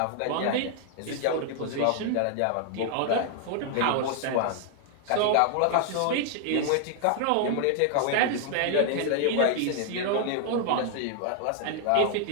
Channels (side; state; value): both; different; correlation 0.00